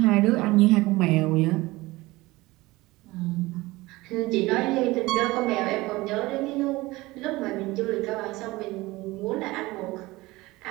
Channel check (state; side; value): quieter; left; 20.4 dB